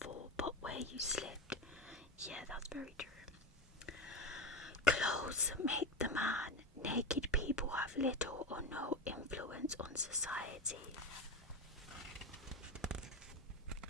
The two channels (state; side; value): normal; both; correlation 0.20